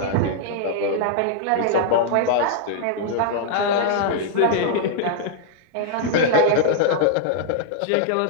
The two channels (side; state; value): both; different; correlation -0.01